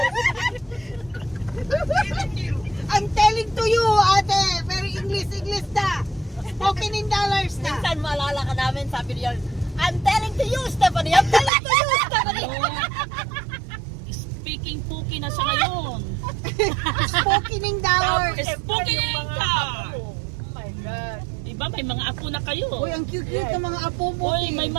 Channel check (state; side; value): drops out; left; at 11.5 s